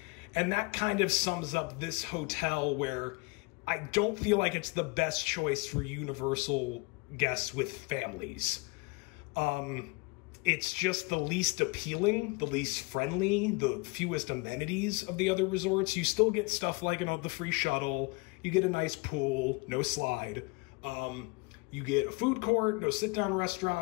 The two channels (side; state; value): right; quieter; 28.1 dB